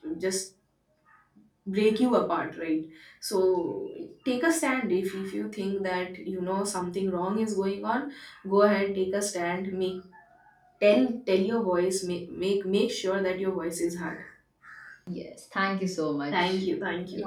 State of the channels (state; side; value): identical; both; correlation 1.00